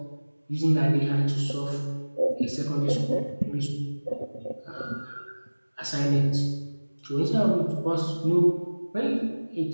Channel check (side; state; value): both; inverted; correlation -1.00